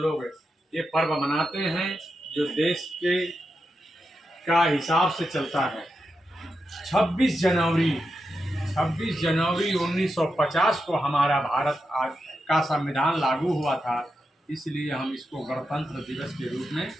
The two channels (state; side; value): normal; both; correlation 0.87